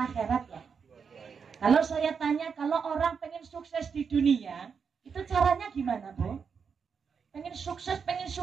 ya. Kalau saya tanya, kalau orang pengen sukses di dunia, itu caranya gimana, Bu? Pengen sukses, pengen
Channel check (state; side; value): quieter; left; 6.1 dB